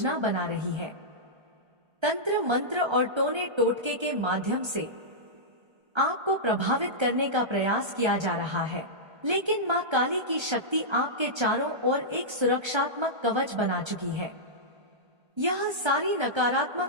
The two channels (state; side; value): late; left; 1.3 ms